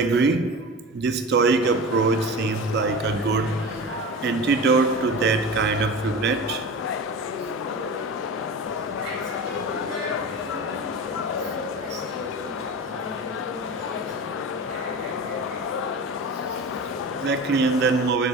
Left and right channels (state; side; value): normal; both; correlation 0.31